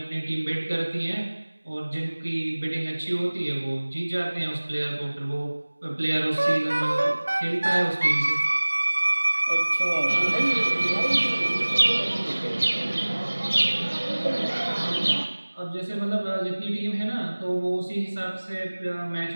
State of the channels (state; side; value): inverted; both; correlation -1.00